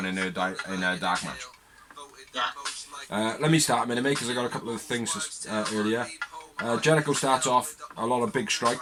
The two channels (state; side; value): identical; both; correlation 1.00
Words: in a dark match. Yeah. Let me start a minute, mate, because I got a couple of things earlier. Jericho starts off a lot of big